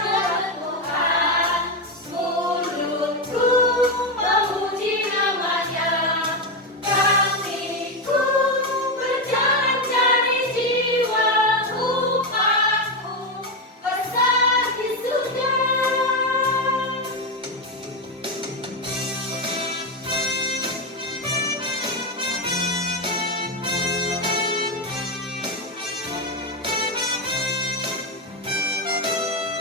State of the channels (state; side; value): normal; both; correlation 0.10